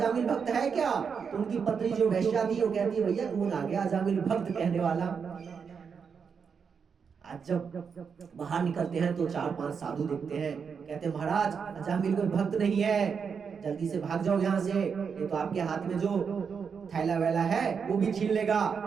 भक्त है क्या। तो उनकी पत्नी जो वैश्या थी वो कहती है भैया कौन आ गया अजामिल भक्त कहने वाला। आज जब बाहर निकलते हैं तो 4-5 साधु देखते हैं, कहते हैं महाराज अजामिल कोई भक्त नहीं है, जल्दी से भाग जाओ यहाँ से, ये तो आपके हाथ में जो थैला वैला है वो भी छीन लेगा।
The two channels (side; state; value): left; quieter; 6.2 dB